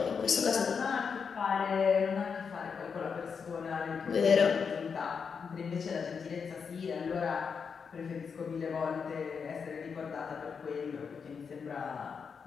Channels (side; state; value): right; quieter; 6.0 dB